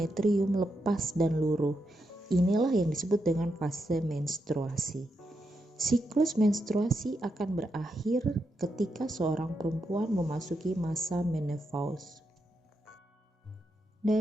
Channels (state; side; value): normal; both; correlation 0.84